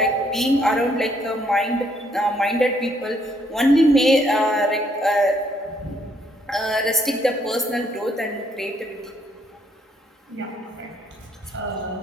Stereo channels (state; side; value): normal; both; correlation 0.69